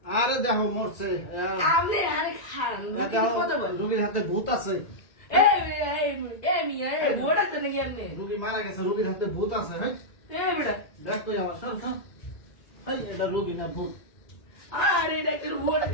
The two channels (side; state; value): right; late; 2.0 ms